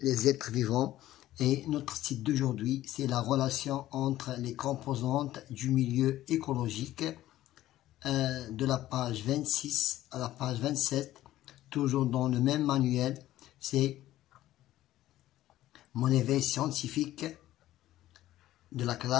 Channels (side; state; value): right; quieter; 14.4 dB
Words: êtres vivants et notre titre d'aujourd'hui c'est la relation entre les composantes du milieu écologique de la page 26 à la page 27, toujours dans le même manuel. C'est mon éveil scientifique de la